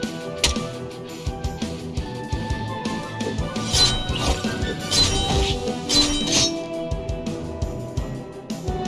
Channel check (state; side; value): identical; both; correlation 1.00